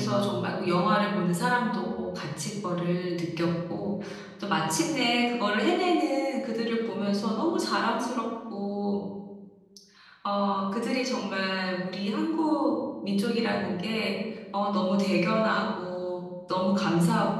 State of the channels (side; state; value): both; identical; correlation 1.00